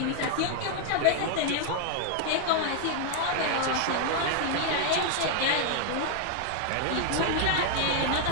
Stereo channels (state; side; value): different; both; correlation 0.00